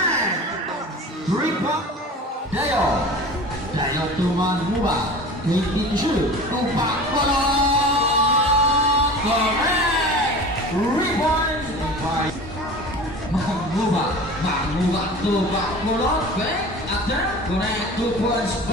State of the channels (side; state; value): both; normal; correlation 0.37